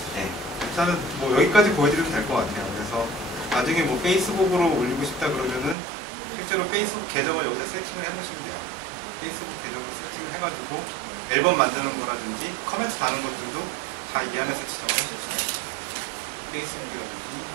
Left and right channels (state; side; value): drops out; left; at 5.8 s